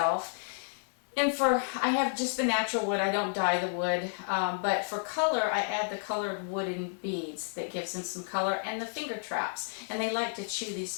And I have just the natural wood, I don't dye the wood, but for color I add the colored wooden beads that gives them some color, and the finger traps. And they like to chew these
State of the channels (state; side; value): silent; right; digital silence